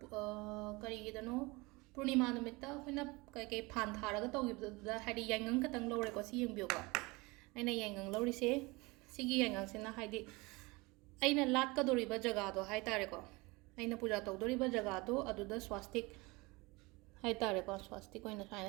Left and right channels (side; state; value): left; quieter; 24.4 dB